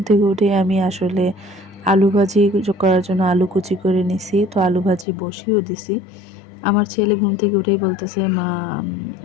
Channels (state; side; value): drops out; right; at 5.1 s